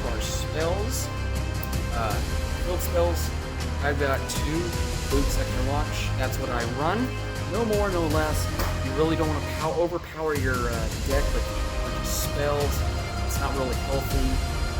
our spells. Field spells. I've got 2 Boot Sector Launch. That's what I run. No more, no less. You really don't want to overpower your deck with a bunch of spells. It's not really healthy.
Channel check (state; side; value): identical; both; correlation 1.00